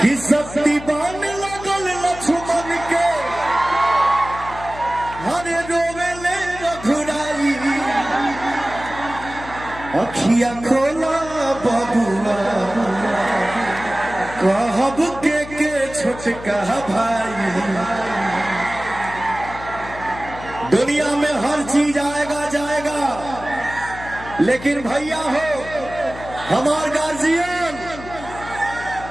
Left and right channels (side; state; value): left; noise; hum, 14 dB below the sound